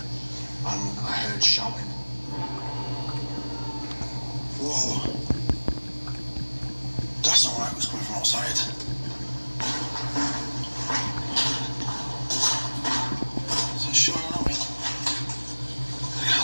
and I heard shouting. Whoa. That's not right, it was coming from outside. Is it showing up? I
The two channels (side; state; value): both; inverted; correlation -1.00